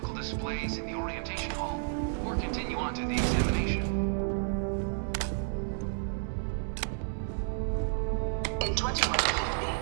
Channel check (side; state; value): left; silent; digital silence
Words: displays in the orientation hall, or continue on to the examination. In